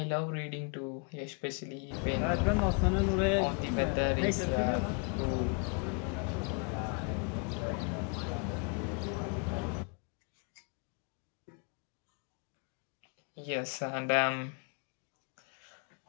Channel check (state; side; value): quieter; right; 37.5 dB